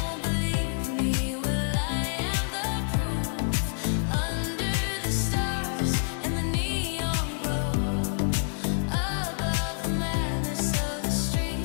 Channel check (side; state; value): right; silent; digital silence